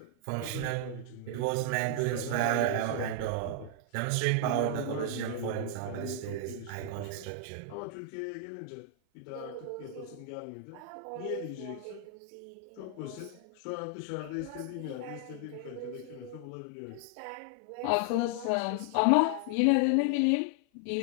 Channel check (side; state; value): both; different; correlation 0.00